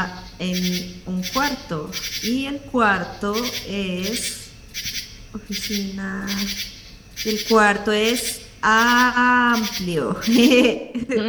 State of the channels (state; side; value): identical; both; correlation 1.00